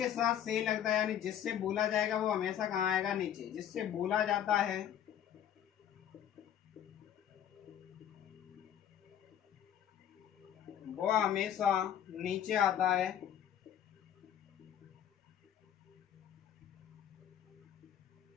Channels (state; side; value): quieter; right; 10.0 dB